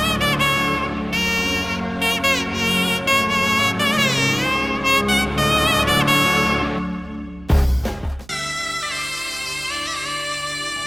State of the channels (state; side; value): noise; right; hum, 23 dB below the sound